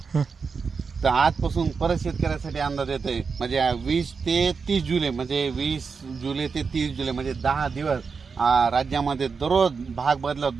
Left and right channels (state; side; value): quieter; left; 5.3 dB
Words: तर आजपासून परत शेतकऱ्यासाठी अंदाज येतोय. म्हणजे 20 ते 30 जुलै, म्हणजे 20 जुलै ते 30 जुलै म्हणजे 10 दिवस राज्यामध्ये दररोज भाग बदला